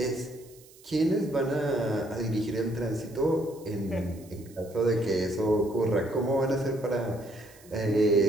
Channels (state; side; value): noise; right; hiss, 24 dB below the sound